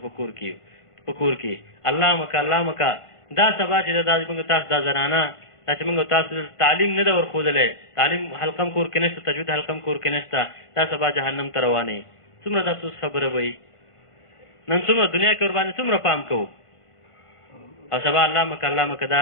په کور کې الله مکه دا سبا چې دا موږ تاسو دا زنانه دا چې موږ تاسو تعلیم نه ده ورښودلی تعلیم حلقه هم کور کې نشته تجوید حلقه هم کور کې نشته دا سبا جهنم ته روانې څومره د افسوس خبره به وي. نن څومره دنیا کې ورباندې څومره پام کوو او سبا الله مکه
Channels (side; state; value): right; late; 1.5 ms